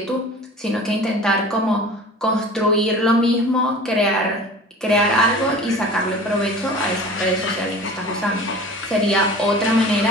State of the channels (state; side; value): normal; both; correlation 0.40